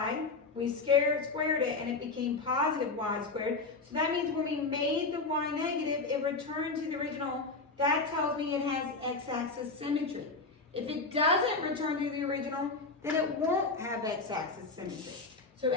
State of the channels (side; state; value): right; quieter; 3.8 dB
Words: we squared it, and it became positive y squared. So that means when we made the y negative, it returned to the original. That tells me it has x-axis symmetry. If it doesn't return to the original, then it won't have x-axis symmetry. So